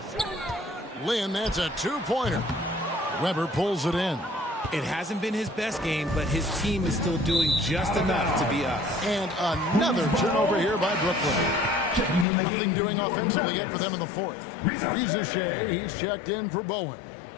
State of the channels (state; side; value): drops out; right; at 12.2 s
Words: Lynn, that's a 2-pointer. Weber pulls it in. It hasn't been his best game, but his team is still doing just enough to be up. And another turnover here by Brooklyn. Nothing doing offensively yet for them in the fourth. Rizachet, he's checked in for Bowen.